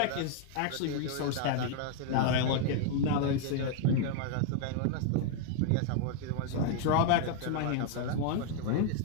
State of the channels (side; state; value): both; different; correlation 0.00